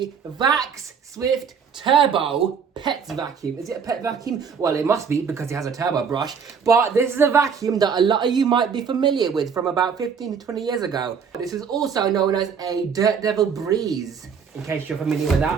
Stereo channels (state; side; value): quieter; left; 6.5 dB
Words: Vax Swift Turbo pet vacuum. Is it a pet vacuum? Well, it must be because it has a turbo brush. But this is a vacuum that a lot of you might be familiar with from about 15 to 20 years ago. This is also known as a Dirt Devil Breeze, in case you're familiar with